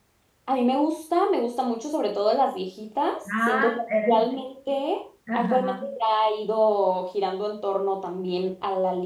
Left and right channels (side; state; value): both; identical; correlation 1.00